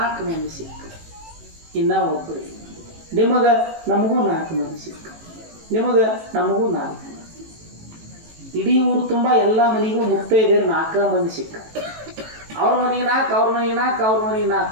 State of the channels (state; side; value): late; left; 18 ms